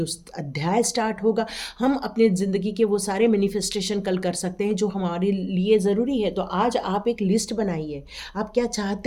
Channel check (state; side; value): identical; both; correlation 1.00